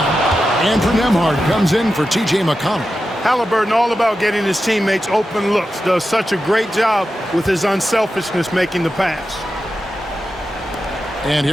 Andrew Nembhard comes in for T.J. McConnell. Halliburton, all about getting his teammates open looks, does such a great job with his unselfishness making the pass. And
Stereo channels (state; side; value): normal; both; correlation 0.91